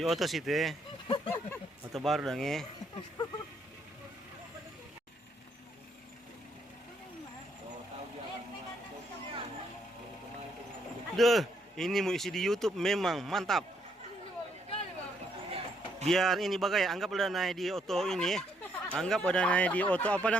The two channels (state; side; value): normal; both; correlation 0.72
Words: oto situ ya. Oto baru dong ya. Duh, ini mau isi di YouTube memang mantap. Biar ini bagai anggap udah naik di oto ini. Anggap udah naik di oto apa